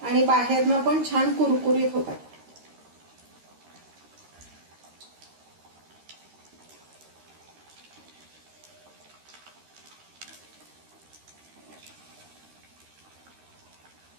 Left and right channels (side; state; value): left; late; 13 ms